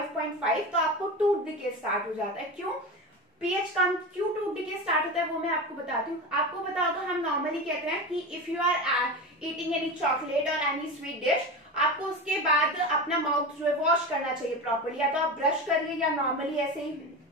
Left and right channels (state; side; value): normal; both; correlation 0.24